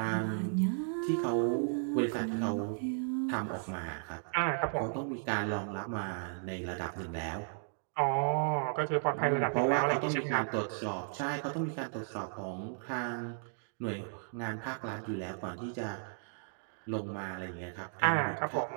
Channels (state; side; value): silent; left; digital silence